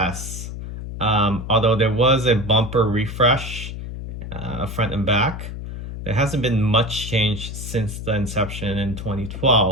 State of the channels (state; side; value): noise; left; hum, 8 dB below the sound